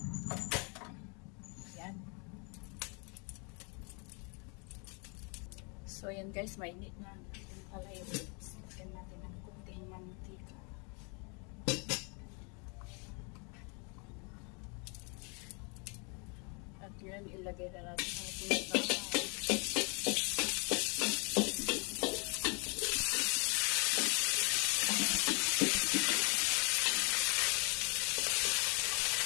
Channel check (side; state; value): right; quieter; 33.9 dB